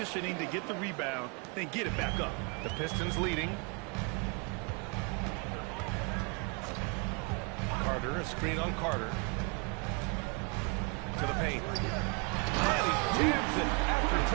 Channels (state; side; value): quieter; left; 33.2 dB